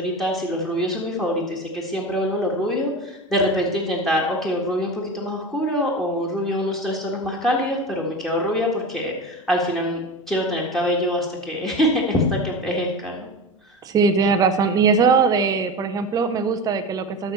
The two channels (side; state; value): both; normal; correlation 0.27